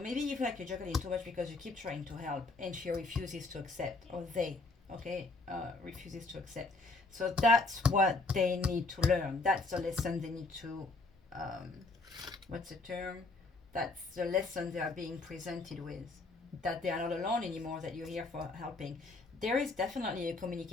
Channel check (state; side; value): quieter; right; 3.5 dB